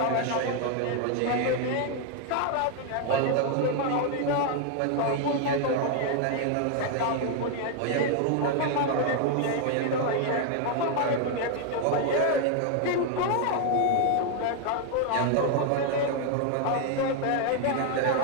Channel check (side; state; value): both; different; correlation 0.00